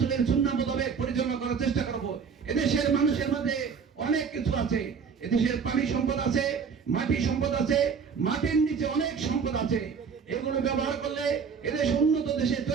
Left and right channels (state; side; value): quieter; left; 6.1 dB